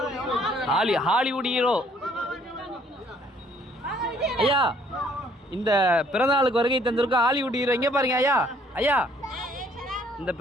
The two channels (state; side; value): normal; both; correlation 0.62